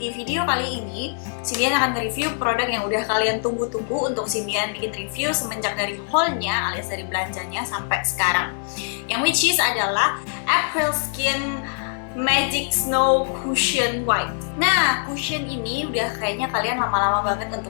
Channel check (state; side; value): silent; right; digital silence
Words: di video kali ini Cindian akan review produk yang udah kalian tunggu-tunggu untuk Cindian bikin review semenjak dari haulnya alias dari belanjanya sampai sekarang. Yang which is adalah April Skin Magic Snow Cushion White. Nah, cushion ini udah kayaknya kalian lama-lama banget